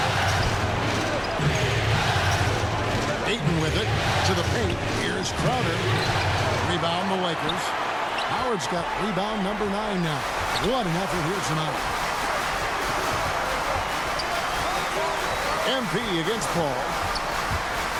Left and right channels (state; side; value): identical; both; correlation 1.00